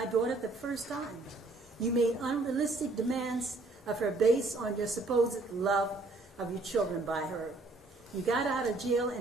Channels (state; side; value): quieter; left; 3.1 dB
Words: daughter the first time. You made unrealistic demands of her based on your supposed love of your children by her. You got out of jail